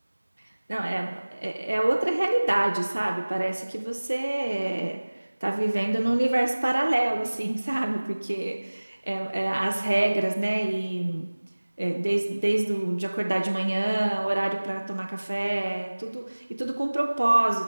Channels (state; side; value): inverted; both; correlation -1.00